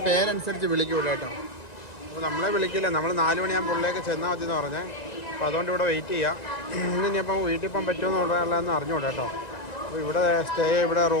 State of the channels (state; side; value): late; right; 1.9 ms